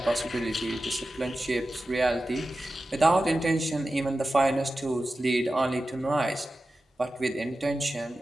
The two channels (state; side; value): normal; both; correlation 0.93